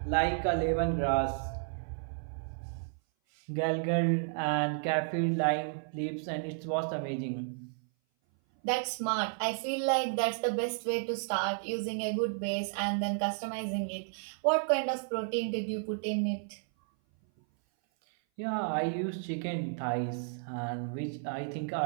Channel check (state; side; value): silent; left; 56 dB below the other